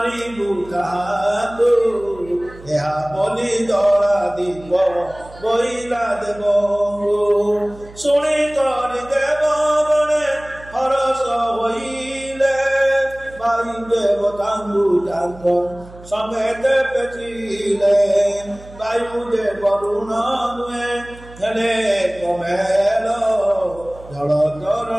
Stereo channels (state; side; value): noise; right; hum, 19 dB below the sound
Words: ତାହାକୁ ଏହା ବୋଲି ଦଳା দিব বইলা দেব শুনি করি দেব বনে হরস হইলে ভাই দেবতাঙ্গু তাঙ্গ সমেতে পেচিলে বায়ু দে বরুণ নুয়ে হেলে কমেল জল